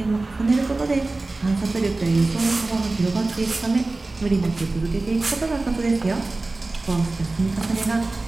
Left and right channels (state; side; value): quieter; left; 3.2 dB